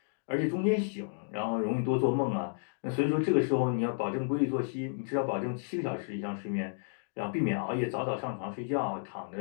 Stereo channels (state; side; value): silent; right; digital silence